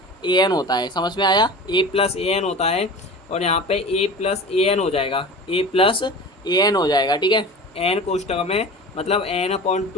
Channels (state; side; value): normal; both; correlation 0.35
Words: होता है, समझ में आया। a+an होता है, और यहाँ पे a+an हो जाएगा, a+an हो जाएगा, ठीक है। n कोष्टक में मतलब